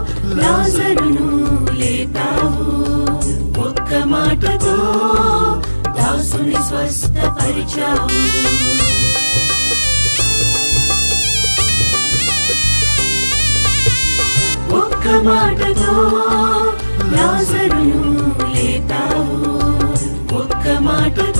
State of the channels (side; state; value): both; inverted; correlation -1.00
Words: లాజరును లేపావు, ఒక్క మాటతో దాసుని స్వస్థపరిచావు. ఒక్క మాటతో లాజరును లేపావు, ఒక్క